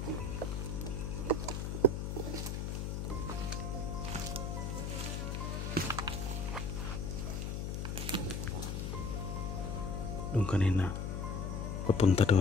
Doon kanina papunta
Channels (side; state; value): left; noise; hum, 2 dB below the sound